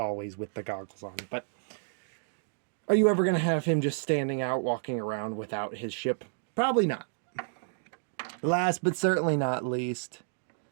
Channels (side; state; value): left; silent; digital silence